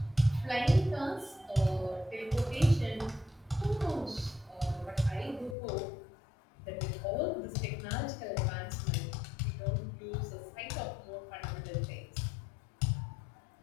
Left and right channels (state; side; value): drops out; right; at 5.6 s